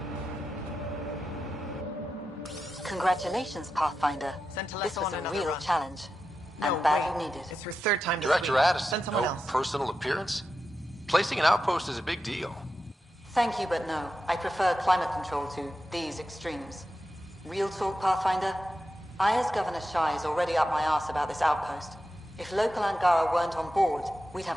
Congratulations, Pathfinder. This was a real challenge. And badly needed. It's her third time this Director week. Addison, Send someone no else. personal appearance? Placing an outpost is a big deal. Thank you, but no. I prefer climate control to these extremes. Real talk, Pathfinder? I, as Governor Shai, is already up my arse about this outpost. If local Angara weren't on board, we'd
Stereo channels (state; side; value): normal; both; correlation 0.90